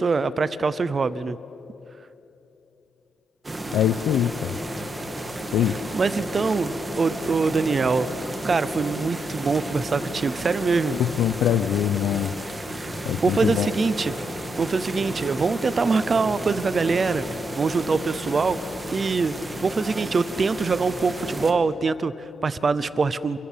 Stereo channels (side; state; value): both; normal; correlation 0.82